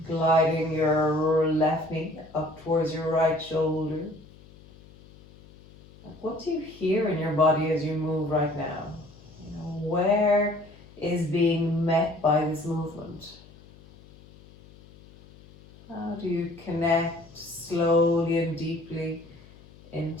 Gliding your left knee up towards your right shoulder. What do you hear in your body as you move right now? You know, where is being met by this movement? How do you connect slowly and deeply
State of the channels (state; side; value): noise; left; hum, 23 dB below the sound